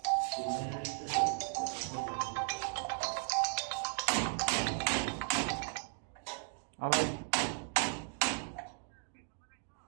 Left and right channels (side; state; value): left; silent; 54 dB below the other